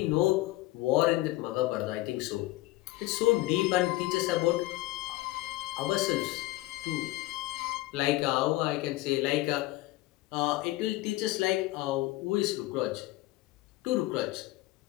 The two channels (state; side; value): quieter; right; 18.5 dB